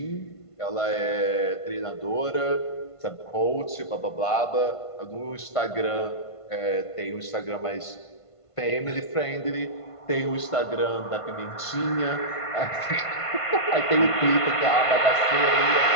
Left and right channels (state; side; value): late; right; 1.5 ms